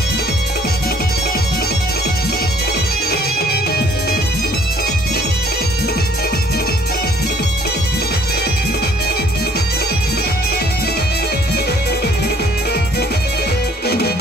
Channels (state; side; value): normal; both; correlation 0.60